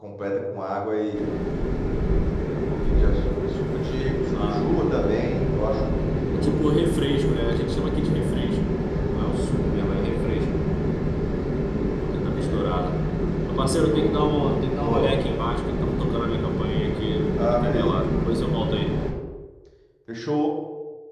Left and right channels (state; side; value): identical; both; correlation 1.00